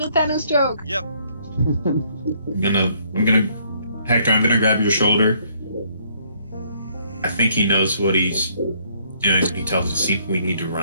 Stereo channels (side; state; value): both; inverted; correlation -0.66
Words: a Thanos joke. Yep. Hector, I'm gonna grab your shoulder. I think he knows what he's doing when he tells us we need to